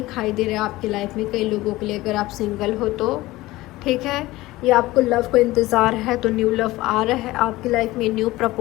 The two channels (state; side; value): quieter; right; 18.5 dB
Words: दे रहा है आपकी लाइफ में, कई लोगों के लिए, अगर आप सिंगल हो तो, ठीक है। या आपको लव को इंतज़ार है तो न्यू लव आ रहा है आपकी लाइफ में, न्यू